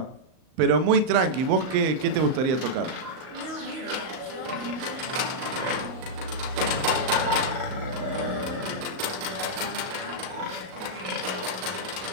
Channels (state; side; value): late; left; 38 ms